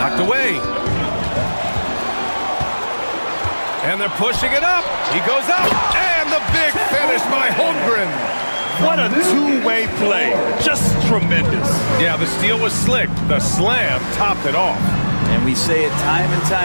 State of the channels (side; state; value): both; inverted; correlation -1.00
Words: away. And they're pushing it up. He goes up. And the big finish by Holmgren. What a two-way play. Just tremendous. Yeah, the steal was slick. The slam topped it off. And we say it time and